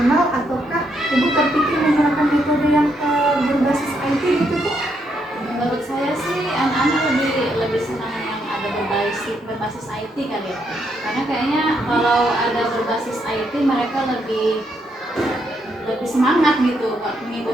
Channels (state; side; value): normal; both; correlation 0.77